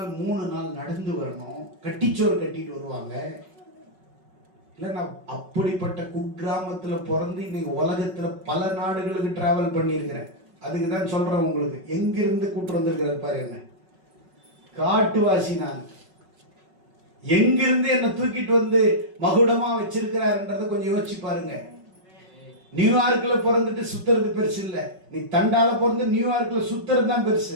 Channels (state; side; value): late; left; 5.4 ms